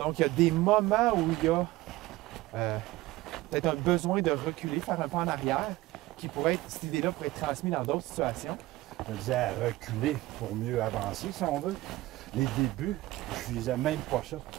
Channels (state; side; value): quieter; left; 18.3 dB